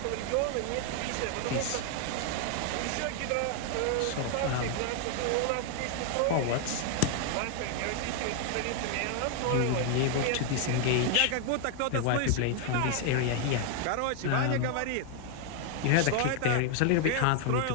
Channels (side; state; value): both; different; correlation 0.00